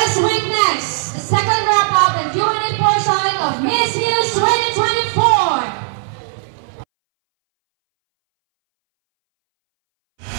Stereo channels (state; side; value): silent; left; 65 dB below the other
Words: us witness the second wrap-up and Q&A portion of Miss News 2024.